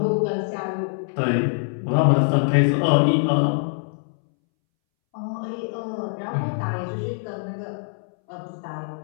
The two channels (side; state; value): right; silent; 63 dB below the other